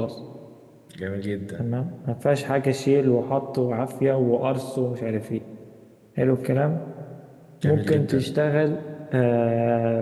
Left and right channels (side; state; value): both; identical; correlation 1.00